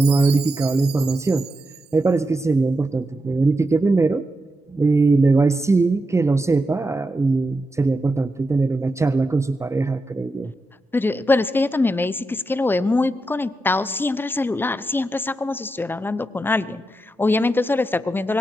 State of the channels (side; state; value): both; normal; correlation 0.87